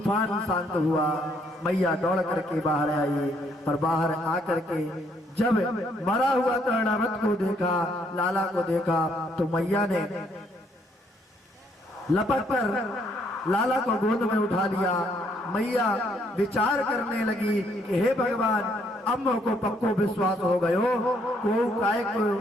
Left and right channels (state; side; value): normal; both; correlation 0.69